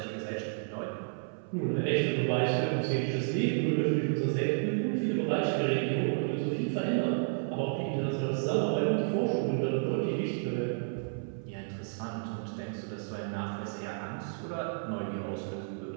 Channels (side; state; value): left; silent; 57 dB below the other